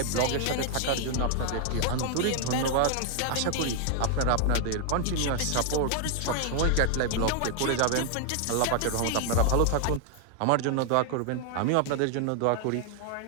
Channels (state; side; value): different; both; correlation 0.00